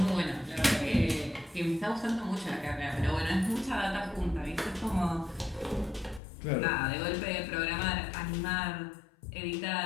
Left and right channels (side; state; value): right; drops out; at 6.2 s